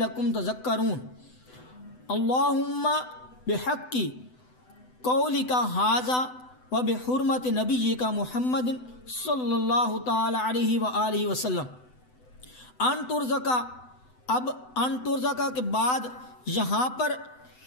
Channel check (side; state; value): right; late; 7.9 ms